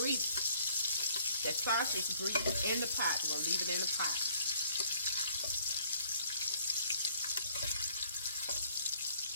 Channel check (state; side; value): inverted; both; correlation -0.62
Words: that sausage grease, in the pot. We're going to leave it in the pot.